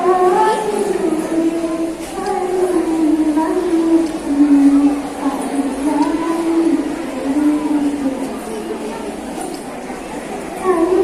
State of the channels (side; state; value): both; identical; correlation 1.00